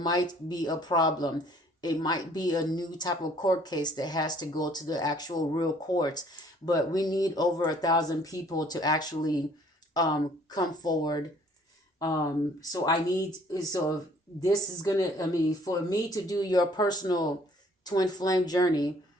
be a problem. It might be a new type of court case that has to go to the actual real courts, but we need over 1,000 people to actually come forward. So this is gonna, I mean, for me to do your personal twin flame journey,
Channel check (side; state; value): both; normal; correlation 0.58